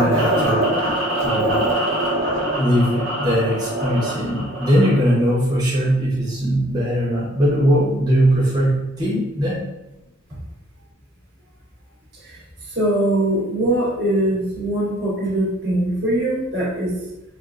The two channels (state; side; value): normal; both; correlation 0.58